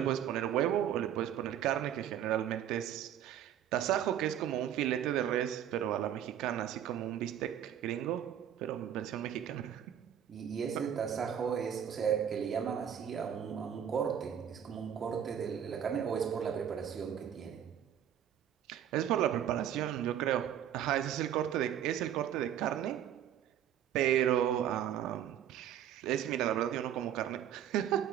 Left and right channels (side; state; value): left; quieter; 10.0 dB